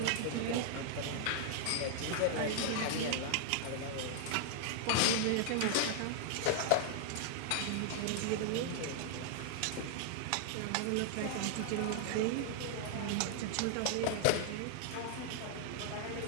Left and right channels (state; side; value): different; both; correlation 0.00